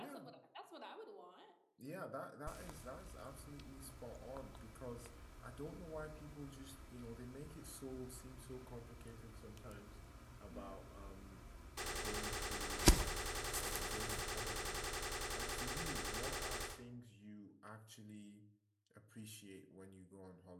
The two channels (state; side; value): identical; both; correlation 1.00